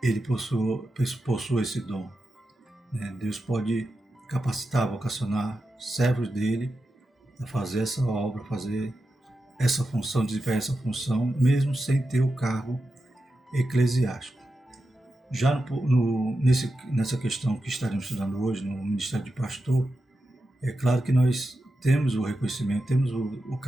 ele possui esse dom. Deus pode capacitar, vocacionar servos dele a fazer essa obra, fazer essa função, desempenhar essa função, mesmo sem ter o cargo eclesiástico. Já nessa questão que estaremos estudando hoje, no ministério de pastor, é claro que nós temos o reconhecimento, temos o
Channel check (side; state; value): both; normal; correlation 0.90